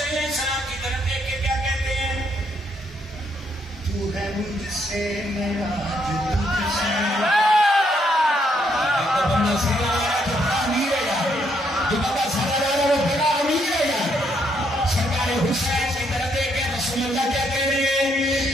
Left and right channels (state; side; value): normal; both; correlation 0.73